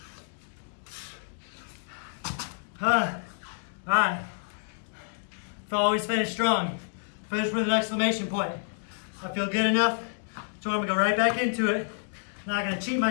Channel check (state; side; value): silent; right; digital silence